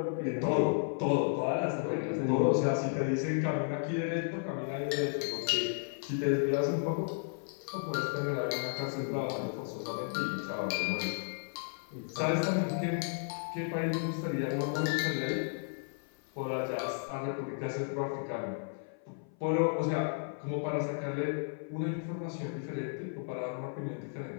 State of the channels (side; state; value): right; silent; 55 dB below the other